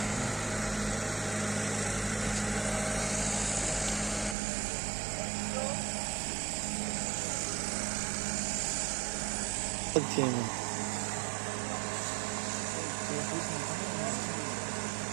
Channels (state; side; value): drops out; left; at 4.4 s